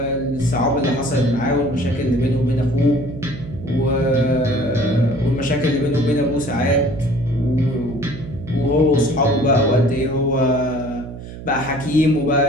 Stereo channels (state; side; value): noise; right; hum, 12 dB below the sound